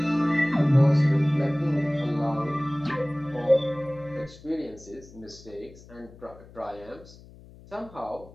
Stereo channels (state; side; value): noise; left; hum, 21 dB below the sound